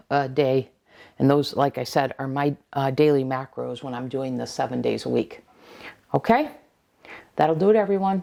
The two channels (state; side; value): identical; both; correlation 1.00